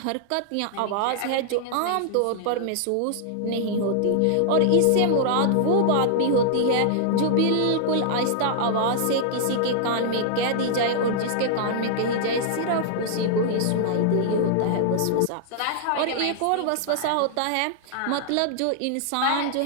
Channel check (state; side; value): different; both; correlation -0.01